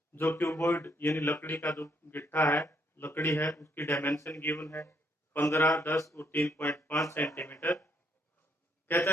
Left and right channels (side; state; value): both; normal; correlation 0.71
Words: जो क्यूबॉइड यानी लकड़ी का जो गिट्टा है, लकड़ी है, उसकी डायमेंशन गिवन है 15, 10 और 3.5 सेंटीमीटर। कहता